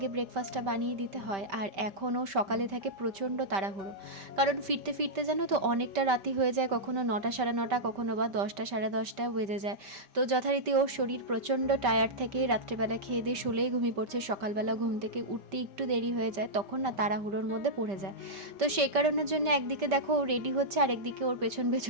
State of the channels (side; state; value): left; late; 5.1 ms